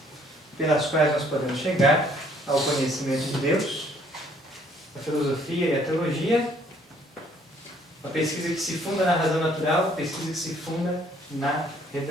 pelas quais nós podemos chegar ao conhecimento de Deus: a filosofia e a teologia. Uma pesquisa que se funda na razão natural, uma pesquisa que se funda na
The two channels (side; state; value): both; normal; correlation 0.63